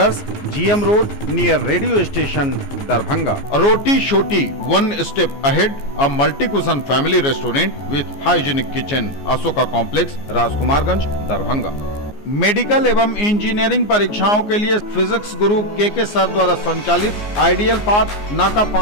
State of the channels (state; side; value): late; right; 14 ms